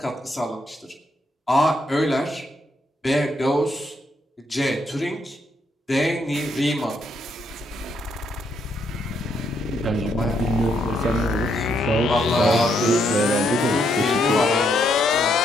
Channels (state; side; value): normal; both; correlation 0.75